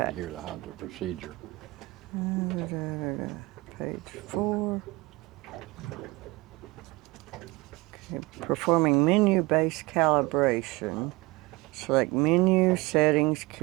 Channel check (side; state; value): left; quieter; 22.5 dB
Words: need to hear how the procedure. Page 4. Okay, performing menu-based calibration. Select menu, settings,